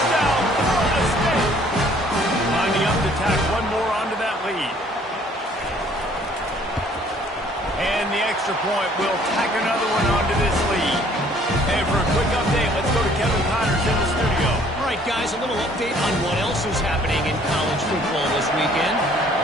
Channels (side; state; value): both; normal; correlation 0.59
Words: Florida State! Lining up to tack one more onto that lead. And the extra point will tack another one onto this lead. And for a quick update, let's go to Kevin Connors in the studio. All right, guys, a little update on what else is happening in college football this weekend.